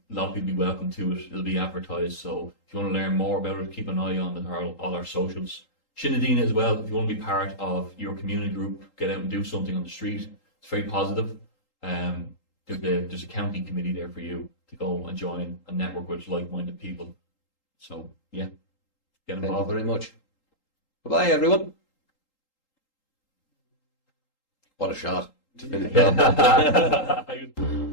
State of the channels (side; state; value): right; late; 3.8 ms